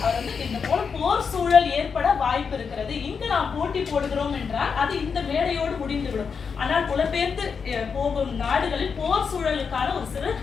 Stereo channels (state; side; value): quieter; right; 5.9 dB